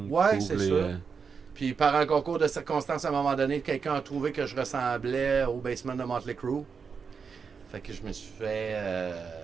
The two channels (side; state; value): left; quieter; 5.8 dB